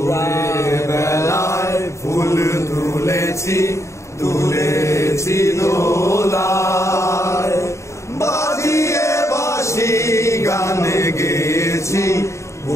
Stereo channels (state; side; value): late; right; 0.14 ms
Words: বেলায় ফুল তুলেছি তুলেছি দোলায়, বাজিয়ে বাঁশি গানে গেয়েছি